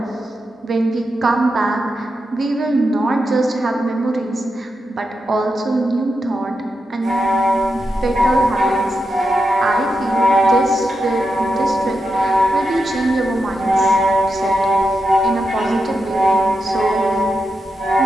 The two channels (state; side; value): normal; both; correlation 0.87